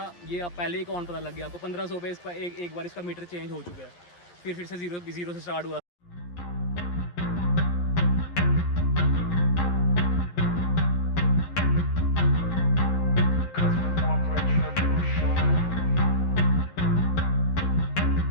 ये आप पहले ही कौन पता लग गया आपको, 1500 पे इसका एक बार इसका मीटर चेंज हो चुका है, फिर से जीरो से स्टार्ट हुआ।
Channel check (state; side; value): late; right; 11 ms